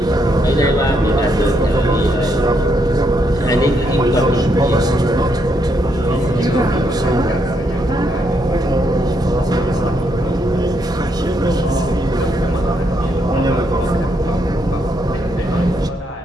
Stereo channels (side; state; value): both; normal; correlation 0.76